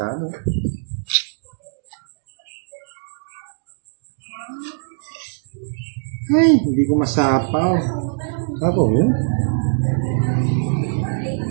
ano. Ay, hindi ko masapaw. Sapo mo?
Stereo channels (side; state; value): left; silent; digital silence